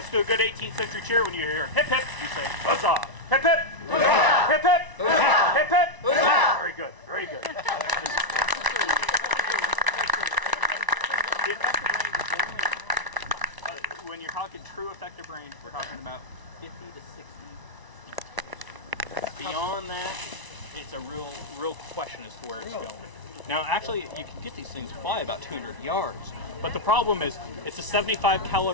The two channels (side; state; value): left; late; 1.0 ms